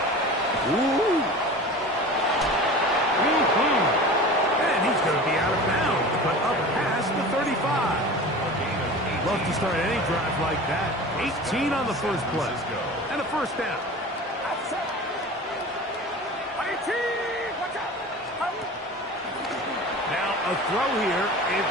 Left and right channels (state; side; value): normal; both; correlation 0.36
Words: Ooh. And he's going to be out of bounds, but up past the 35. Love to start any drive like that. 18 on the first play. And a first down. Now a throw here.